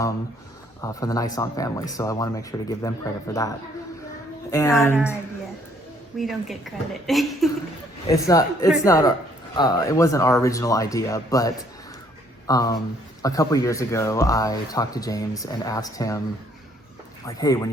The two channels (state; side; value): normal; both; correlation 0.65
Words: the Nyson family. So I want to make sure to give them credit for that. And not our idea. We don't get credit. it wasn't our original idea, but a couple years ago I talked to James and asked him, like, hey, when